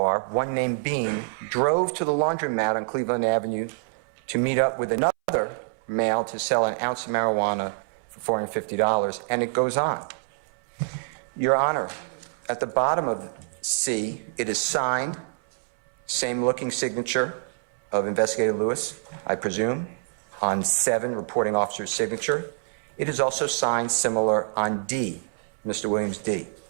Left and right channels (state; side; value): silent; left; 61 dB below the other